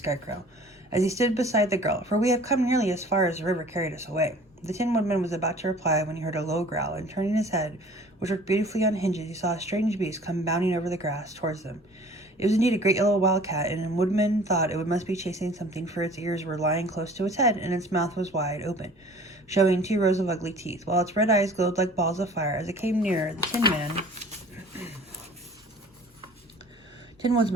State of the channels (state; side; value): normal; both; correlation 0.48